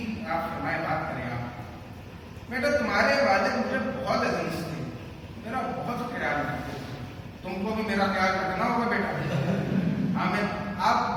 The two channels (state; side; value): identical; both; correlation 1.00